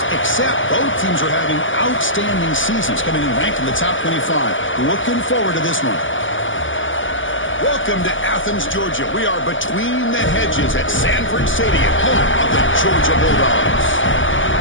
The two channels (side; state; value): right; late; 0.56 ms